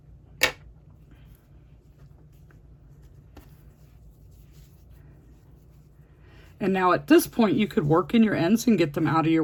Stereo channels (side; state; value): both; identical; correlation 1.00